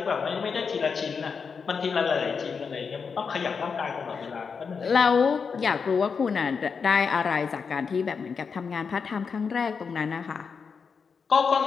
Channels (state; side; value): quieter; right; 5.7 dB